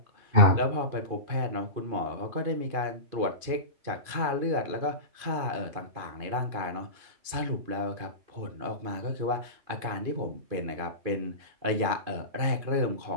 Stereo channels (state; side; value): late; left; 2.5 ms